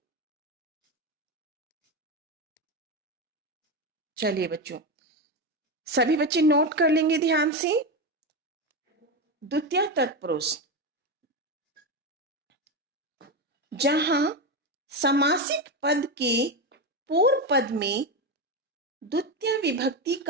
चलिए बच्चों, सभी बच्चे नोट कर लेंगे ध्यान से। द्वितीय तत्पुरुष, जहां समासिक पद के पूर्व पद में द्वितीय विभक्ति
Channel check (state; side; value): normal; both; correlation 0.14